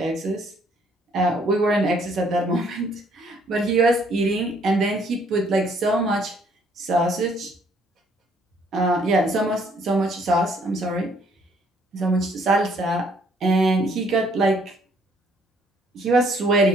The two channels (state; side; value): normal; both; correlation 0.64